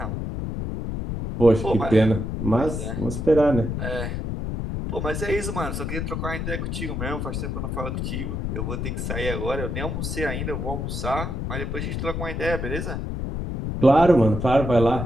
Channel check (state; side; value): noise; left; rumble, 3 dB below the sound